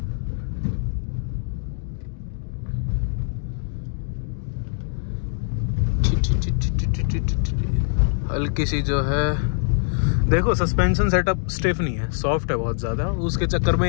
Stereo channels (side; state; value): right; silent; digital silence